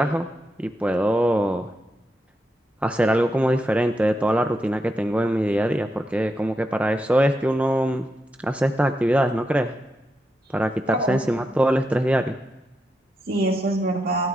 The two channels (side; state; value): both; normal; correlation 0.85